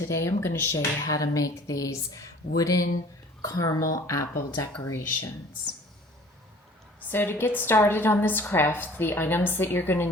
I'm going to show you how to make these wooden caramel apple decorations. So to get started on this craft, the items that you're going to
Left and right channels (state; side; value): normal; both; correlation 0.50